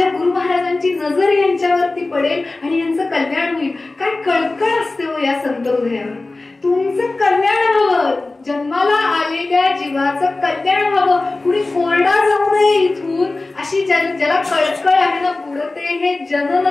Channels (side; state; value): right; quieter; 3.2 dB